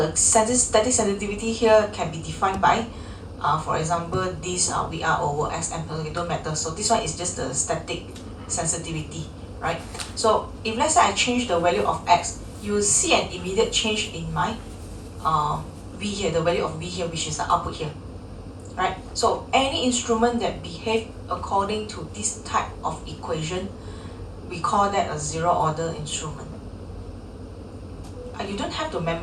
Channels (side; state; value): both; identical; correlation 1.00